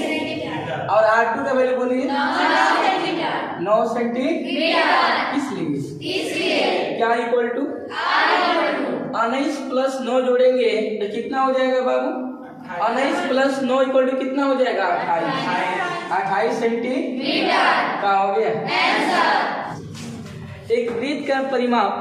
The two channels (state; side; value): identical; both; correlation 1.00